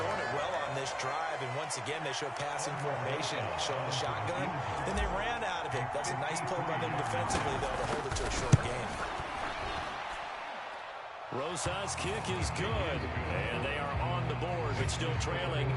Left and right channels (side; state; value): both; identical; correlation 1.00